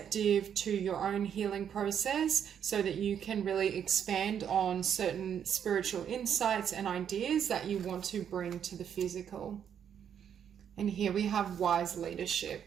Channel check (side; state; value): left; quieter; 8.6 dB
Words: to your own healing process so that you can really expand on certain spiritual insights and ideas that you want to bring to the physical. And here we have wise leadership.